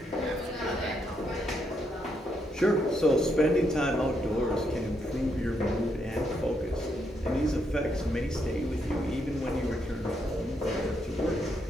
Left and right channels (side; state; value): both; normal; correlation 0.77